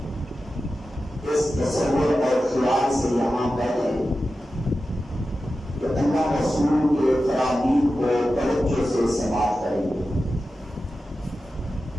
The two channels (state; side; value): normal; both; correlation 0.93